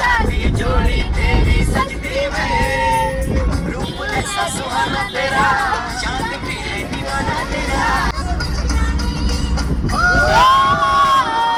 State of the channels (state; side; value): identical; both; correlation 1.00